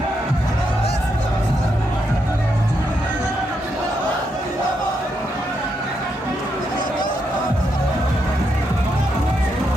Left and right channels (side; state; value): both; normal; correlation 0.81